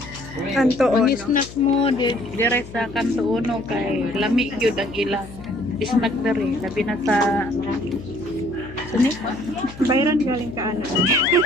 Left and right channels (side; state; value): left; noise; hum, 15 dB below the sound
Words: Kanto ang ono. snack mo dire sa kanto uno kay lamig yun ang ilang snack dere labi na sa sini Bayran galing ka ano.